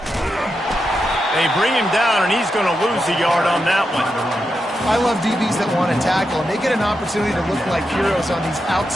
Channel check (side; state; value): both; normal; correlation 0.86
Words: They bring him down, and he's going to lose a yard on that one. I love DBs that want to tackle, and they get an opportunity to look like heroes on these